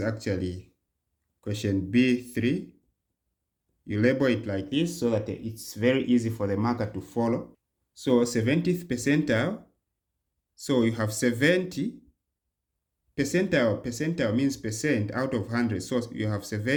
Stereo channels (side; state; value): both; identical; correlation 1.00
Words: actually question B3. You label it like this so that it's very easy for the marker to follow. So 70th percentile, so you have 70 percentile. Percentile means percent out of 100. So you have